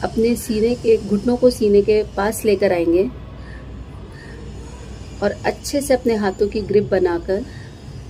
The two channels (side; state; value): both; identical; correlation 1.00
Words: अपने सीने के घुटनों को सीने के पास लेकर आएंगे और अच्छे से अपने हाथों की ग्रिप बनाकर